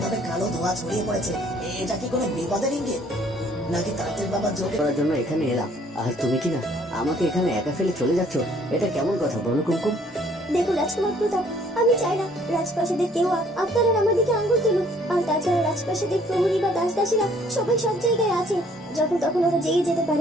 কালো ধোঁয়া ছড়িয়ে পড়েছে। এটা কি কোনো বিপদের ইঙ্গিত, নাকি তান্ত্রিক বাবার যজ্ঞ করার জন্য এখানে এলাম, আর তুমি কি না আমাকে এখানে একা ফেলে চলে যাচ্ছ? এটা কেমন কথা বলো কুমকুম? দেখো রাজকুমার প্রতাপ, আমি চাই না রাজপ্রাসাদের কেউ আপনারা আমার দিকে আঙ্গুল তুলুক। আর তাছাড়া রাজপ্রাসাদের প্রহরী বা দাসদাসীরা সবাই সব জায়গায় আছে, যখন তখন ওরা জেগে যেতে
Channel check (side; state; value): both; normal; correlation 0.60